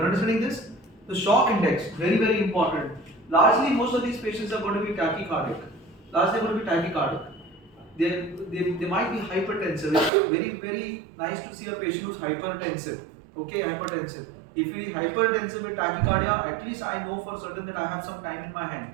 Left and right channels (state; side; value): drops out; left; at 10.1 s